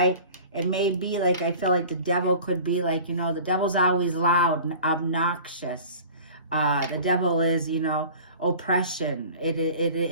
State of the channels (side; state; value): both; inverted; correlation -0.42